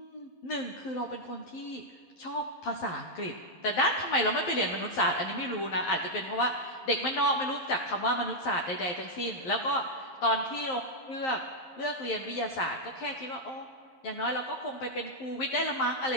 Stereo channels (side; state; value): right; late; 11 ms